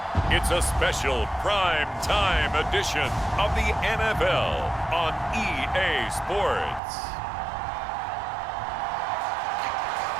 it's a special prime time edition of the NFL on EA Sports.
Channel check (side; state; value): left; drops out; at 6.8 s